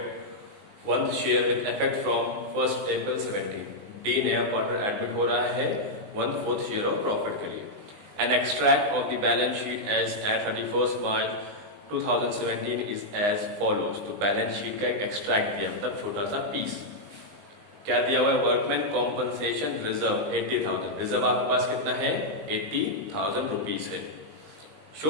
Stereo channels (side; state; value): left; late; 19 ms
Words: 1th share with effect from 1st April 17. D नया partner admit हो रहा है 1/4 share of profit के लिए। An extract of the balance sheet as at 31st March 2017 is as follows. तो balance sheet का एक extract दिया, मतलब छोटा सा पीस। क्या दिया हुआ है? Workman compensation reserve 80,000। रिजर्व आपके पास कितना है? 80,000 रुपीज है।